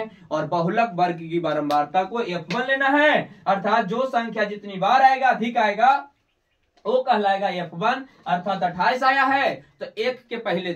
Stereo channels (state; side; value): identical; both; correlation 1.00